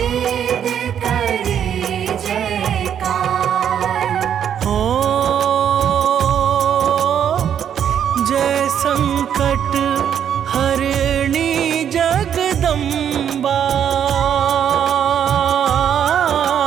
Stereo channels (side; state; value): left; quieter; 9.0 dB